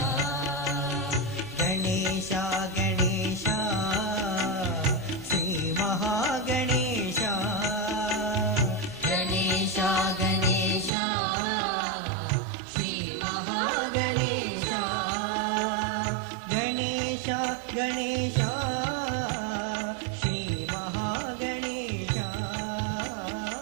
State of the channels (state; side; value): drops out; left; at 10.9 s